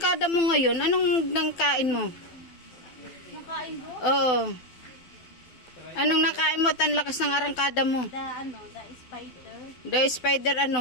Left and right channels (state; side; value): late; right; 12 ms